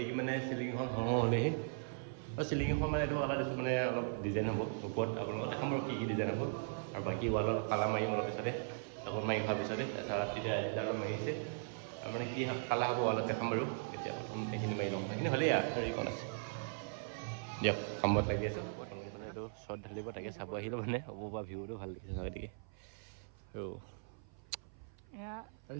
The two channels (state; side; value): silent; left; 52 dB below the other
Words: মানে চিলিংখন হ'লেহি আৰু চিলিংখন মানে এইটো কালাৰ দিছোঁ মানে অলপ ডিজাইন হ'ব ওপৰত আপোনালোকক দেখাম আৰু কি ডিজাইন হ'ব আৰু বাকী ৱালত কালাৰ মাৰিম অলপ পিছতে আকৌ মাৰি হোৱাৰ পিছতে তাৰপিছত তেতিয়া এডালো মাৰিছে আৰু মানে কি কালাৰ হ'ব ৱালত দেখাম বাৰু এতিয়া প্ৰথম সেইখিনি মাৰি ল'ম সেইখিনি হ'লেই আৰু এইখন আছে দিয়ক কামত লাগি আছোঁ প্ৰথম মানে এইটো শ্বৰ্ট ঢালিব তাকে চাব আহিলোঁ মানে হ'ব পৰা ভিউটো ভাল লাগিছে গতিকে আৰু